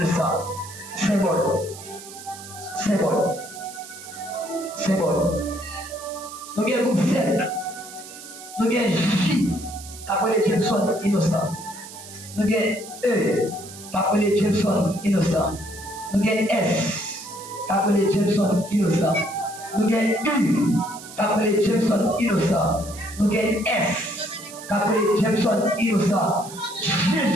Symbole. Nous avons groupe 7. Nous avons J après les Jameson innocent. Nous avons E après les Jameson innocent. Nous avons S après les Jameson innocent. Nous avons U après les Jameson innocent. Nous avons S après les Jameson innocent.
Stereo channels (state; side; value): noise; right; hiss, 15 dB below the sound